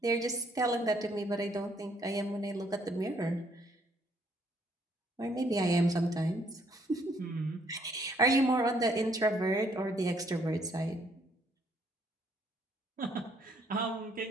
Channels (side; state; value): both; normal; correlation 0.67